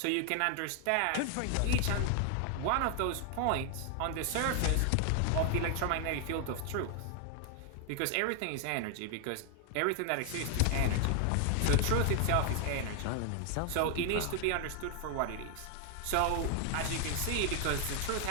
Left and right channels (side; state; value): both; different; correlation 0.00